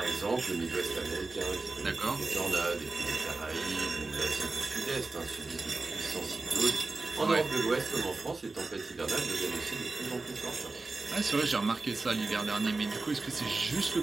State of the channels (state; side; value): quieter; left; 3.5 dB